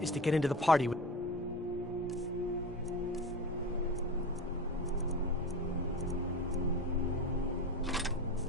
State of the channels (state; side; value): normal; both; correlation 0.29